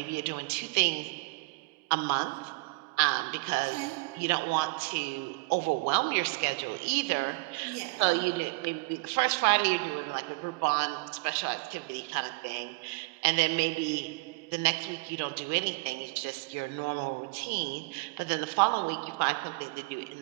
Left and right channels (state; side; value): quieter; left; 27.5 dB